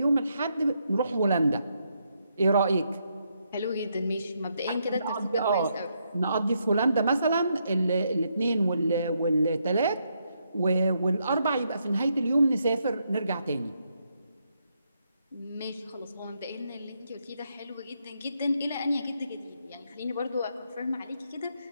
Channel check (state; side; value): inverted; both; correlation -0.78